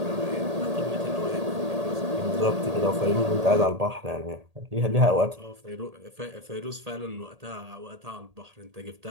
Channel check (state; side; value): late; left; 1.8 ms